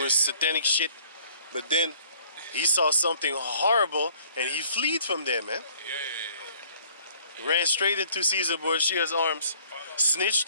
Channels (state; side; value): inverted; both; correlation -0.57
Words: satanic shit. But then he saw something horrible and he fled from there, man. Yeah. Ran straight into Caesar Borgia's arms, snitched